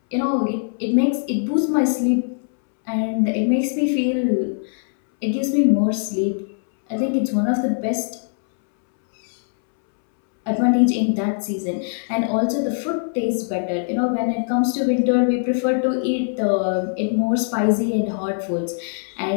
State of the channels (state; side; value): silent; right; 65 dB below the other